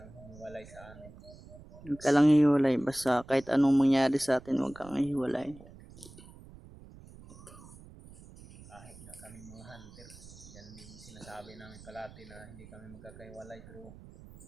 humiwalay sa amin. Huwag ka lang hiwalay. Basta kahit anong mangyari sa atin, huwag kang hiwalay. Kahit na kami mga hunter yan yung sinasabi namin palati na hindi kami magkakaiwalay pero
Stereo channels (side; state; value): right; noise; rumble, 19 dB below the sound